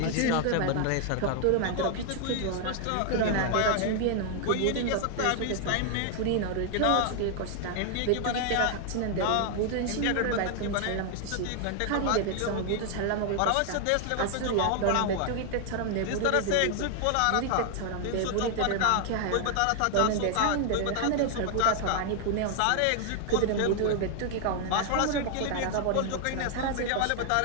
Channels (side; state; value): both; different; correlation 0.00